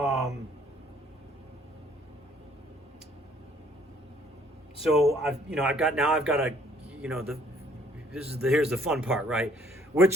So I've got a here's the fun part, right?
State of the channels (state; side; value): normal; both; correlation 0.62